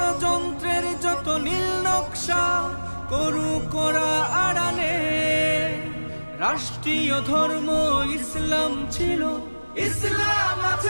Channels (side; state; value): both; inverted; correlation -1.00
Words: যত নীল নকশা করু করা আড়ালে, রাষ্ট্রীয় ধর্ম ইসলাম ছিল, ইসলাম